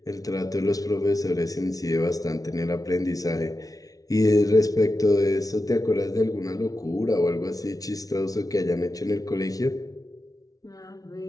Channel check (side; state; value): right; late; 0.18 ms